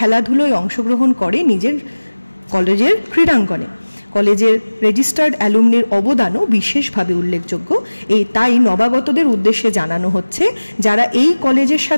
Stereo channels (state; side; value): inverted; both; correlation -1.00